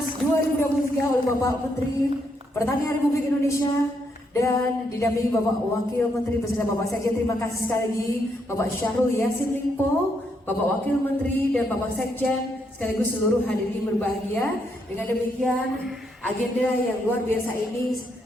2023 oleh Bapak Menteri Pertanian Republik Indonesia dan didampingi Bapak Wakil Menteri beserta Bapak Sekjen. Terima kasih sekali lagi Bapak Syahrul Yassin Limpo, Bapak Wakil Menteri dan Bapak Sekjen sekaligus seluruh hadirin berbahagia. Dengan demikian agenda yang luar biasa ini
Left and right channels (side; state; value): both; normal; correlation 0.77